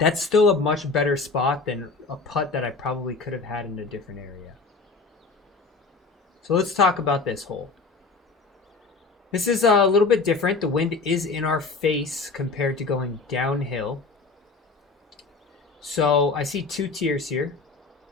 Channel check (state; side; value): quieter; right; 4.1 dB